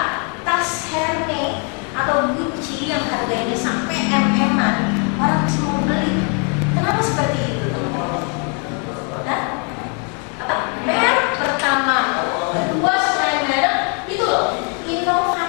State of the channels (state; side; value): quieter; right; 37.5 dB